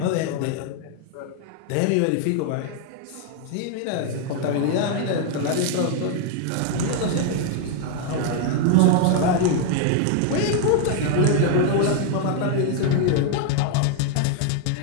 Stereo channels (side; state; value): both; different; correlation 0.00